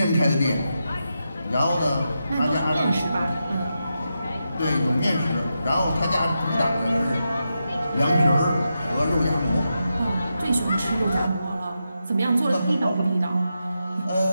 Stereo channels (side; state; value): both; inverted; correlation -0.87